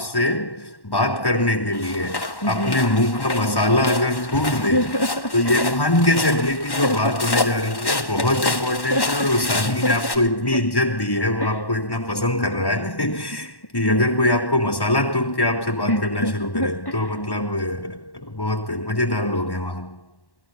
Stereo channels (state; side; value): late; right; 1.1 ms